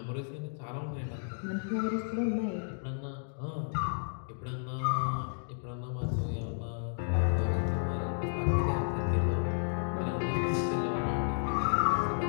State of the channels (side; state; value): right; silent; digital silence